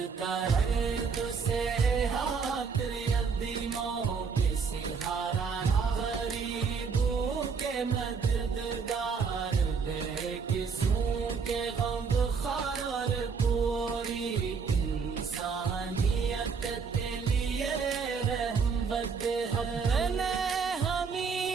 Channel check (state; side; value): quieter; left; 5.6 dB